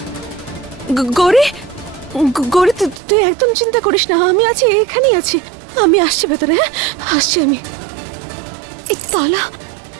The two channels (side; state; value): left; drops out; at 3.0 s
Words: গৌরী গৌরী, তুই একদম চিন্তা করিস না, আমি আছি, এখানেই আছি। আমি আসছি ভেতরে। হ্যাঁ, আসছি আমি।